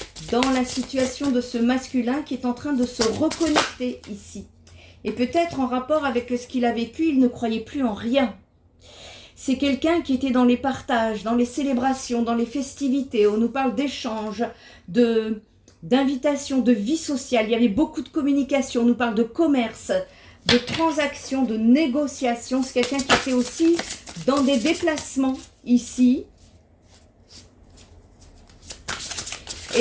dans la situation de ce masculin qui est en train de se reconnecter ici. Et peut-être en rapport avec ce qu'il a vécu, il ne croyait plus en rien. C'est quelqu'un qui était dans les partages, dans les célébrations, dans les festivités. On nous parle d'échanges, d'invitations, de vie sociale. Il y avait beaucoup de communication. On nous parle de commerce, de transactions, de négociations. C'est quelqu'un qui était aussi dans des déplacements ici.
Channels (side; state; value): both; identical; correlation 1.00